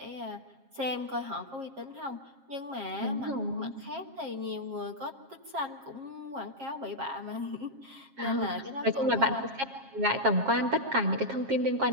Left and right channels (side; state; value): left; late; 7.4 ms